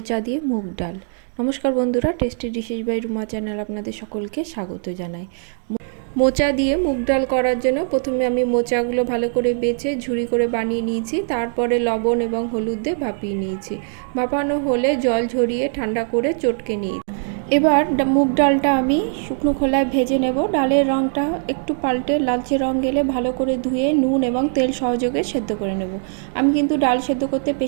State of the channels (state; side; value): silent; left; digital silence